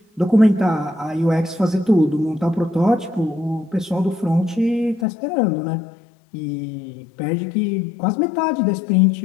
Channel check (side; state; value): right; drops out; at 5.1 s